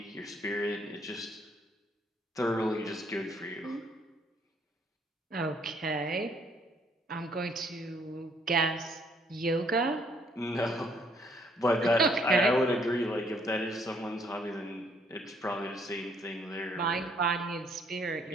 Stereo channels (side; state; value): both; normal; correlation 0.66